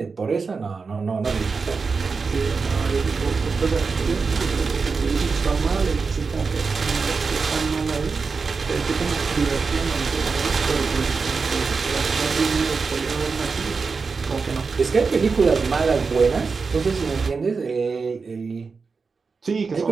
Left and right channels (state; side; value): quieter; left; 4.8 dB